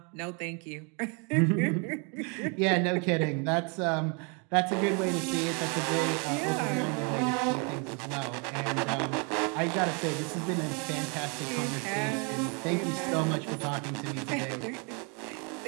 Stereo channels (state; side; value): quieter; left; 34.8 dB